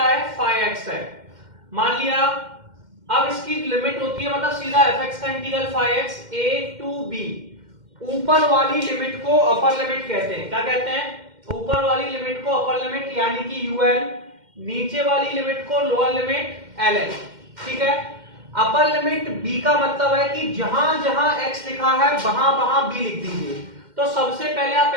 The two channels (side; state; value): left; late; 2.1 ms